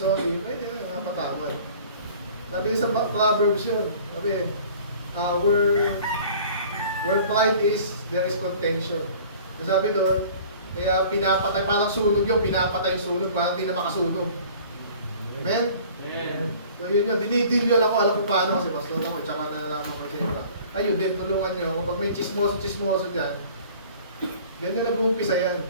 pwede na yung patawad. Sabi sa Proverbs yun, sabi, where pride is, there is contention. Sabi doon, kaya pinapatay, parang sunog yung pinapatay yung sunog, parang hindi na makasunog. Amen? Amen. So yun yun, dinidilyon ako, alam ko paano kasi pastor ako, tsaka nalalaman ko kasi iba. Ayun, din tulungan nyo, pag may chismoso dyan, Ganyan nag-uumpisa yan.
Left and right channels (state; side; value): inverted; both; correlation -0.48